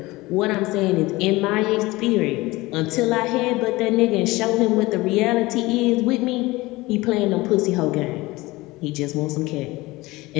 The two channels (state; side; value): quieter; right; 20.7 dB